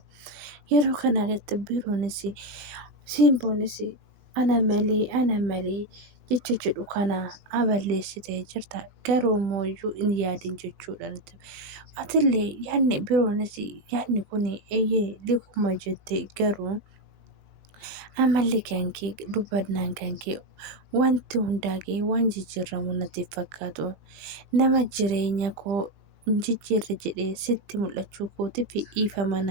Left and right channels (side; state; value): left; late; 20 ms